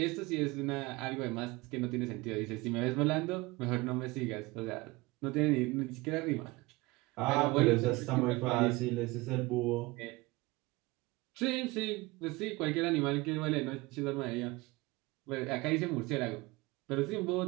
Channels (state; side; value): quieter; left; 22.4 dB